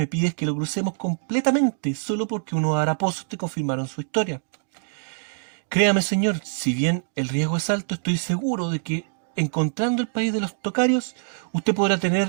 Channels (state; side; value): silent; left; digital silence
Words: pides que lo crucemos completamente, solo porque unos haraposos te confirmaron su historia. Créame, señor, si bien el riesgo es alto, estoy seguro de que, encontrando el país de los tocarios, usted podrá